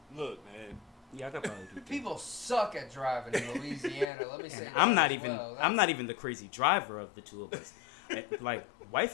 Look, man. Yeah, I could probably do 3. People suck at driving in Louisiana. Let me say. And that I'm not as even well. I'm not even the crazy driver of the two of us. Like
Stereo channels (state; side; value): drops out; right; at 4.1 s